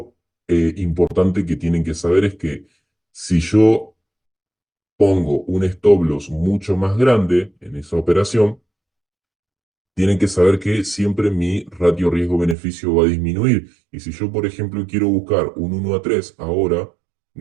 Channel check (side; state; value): left; drops out; at 12.6 s